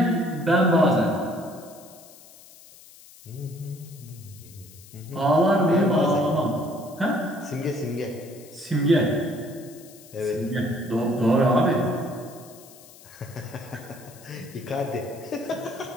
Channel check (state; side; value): noise; left; hiss, 21 dB below the sound